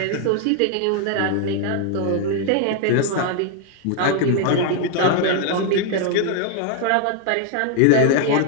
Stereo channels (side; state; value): both; different; correlation 0.00